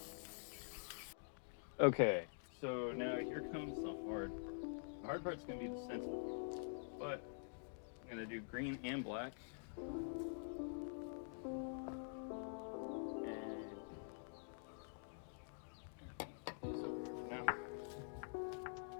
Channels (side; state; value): right; silent; digital silence